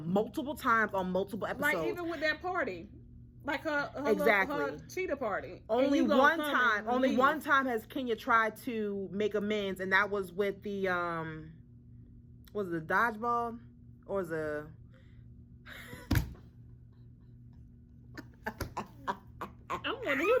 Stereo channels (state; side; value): identical; both; correlation 1.00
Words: times on multiple episodes. Like even with that party, like her cheetah party. Only one time has Kenya tried to make amends, and that was with the was it the dodgeball or the. I'm wondering who